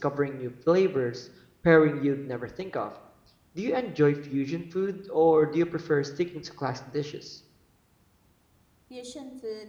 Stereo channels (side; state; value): both; identical; correlation 1.00